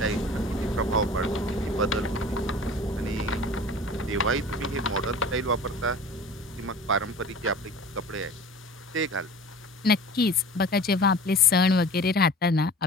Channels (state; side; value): normal; both; correlation 0.40